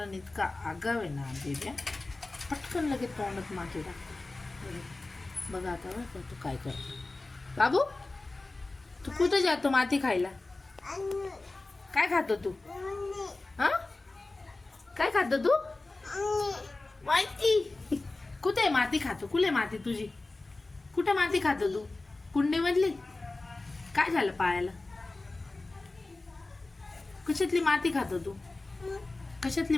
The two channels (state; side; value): quieter; right; 3.2 dB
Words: इतका आगाव आहे ना बेबी. पटकन लगेच तोंडात माती टाकतो. बघा आता बघ तू काय करतो. बाबू तू कुठं जातो माती खायला? काय खातो तू? हा काय खातो तू? माहिती कुठे माती खातो? कुठे माती तुझी? कुठे माती खातो तू? कुंडीमधली? काय झालं पायाला? कशातली माती खातो तू? कशातली